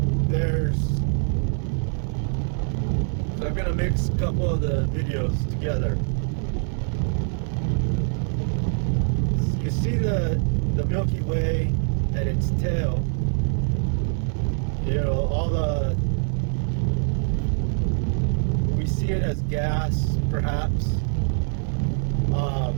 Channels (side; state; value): left; silent; 62 dB below the other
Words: so I'm gonna mix a couple of the videos together. You see the Milky Way and its tail. You know, we see it as gas, perhaps.